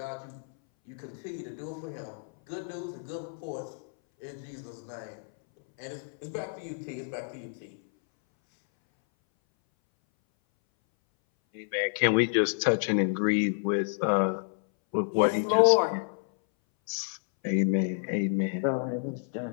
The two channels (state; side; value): silent; right; 58 dB below the other